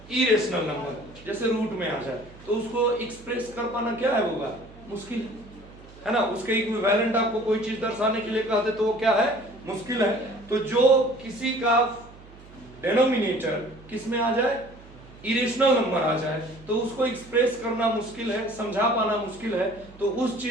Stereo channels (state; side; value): noise; right; hum, 21 dB below the sound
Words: इरेशनल नंबर, जैसे रूट में आ जाए, तो उसको एक्सप्रेस कर पाना क्या है होगा, मुश्किल है ना। उसके इक्विवेलेंट आपको कोई चीज दर्शाने के लिए कहते तो वो क्या है, मुश्किल है। तो जो किसी का डेनोमिनेटर किस में आ जाए, इरेशनल नंबर आ जाए, तो उसको एक्सप्रेस करना मुश्किल है, समझा पाना मुश्किल है। तो उस